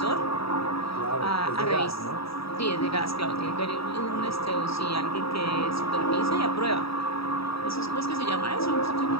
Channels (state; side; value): late; right; 0.76 ms